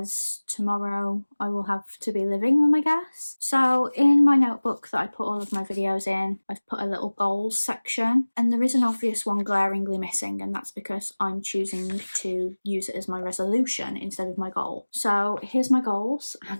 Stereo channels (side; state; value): both; inverted; correlation -1.00